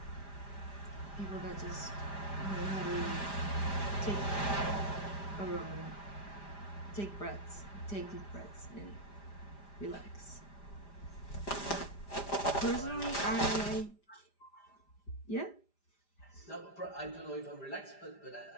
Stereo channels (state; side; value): late; right; 5.0 ms